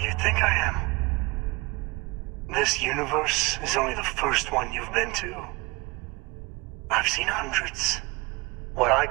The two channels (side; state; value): left; quieter; 24.9 dB